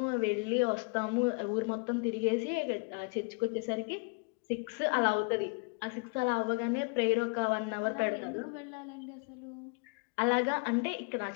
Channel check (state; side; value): quieter; right; 33.1 dB